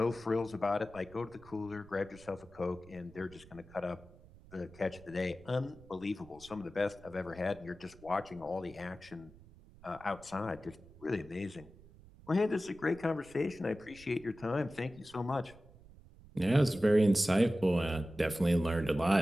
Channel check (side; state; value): right; noise; rumble, 22 dB below the sound